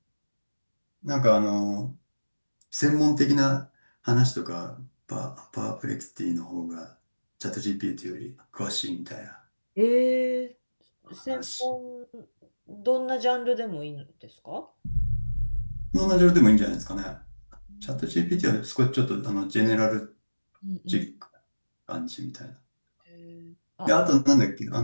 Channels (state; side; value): inverted; both; correlation -1.00